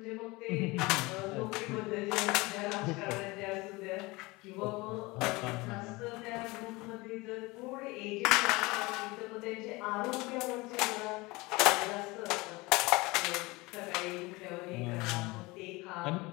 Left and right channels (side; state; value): right; quieter; 23.1 dB